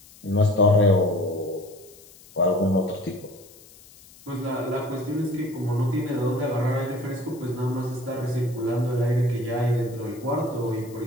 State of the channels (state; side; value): noise; left; hiss, 23 dB below the sound